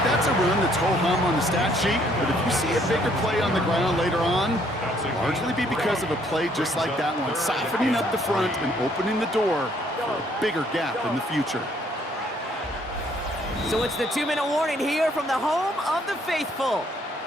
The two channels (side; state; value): both; normal; correlation 0.65